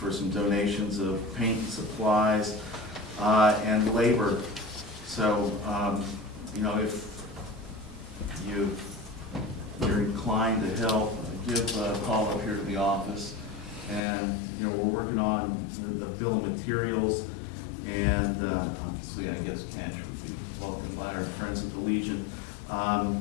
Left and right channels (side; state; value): right; drops out; at 14.0 s